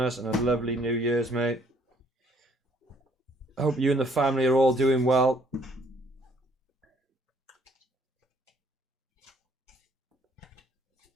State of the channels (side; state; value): both; normal; correlation 0.62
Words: and a lovely New Year's, mate. Hope you and the family are all doing well.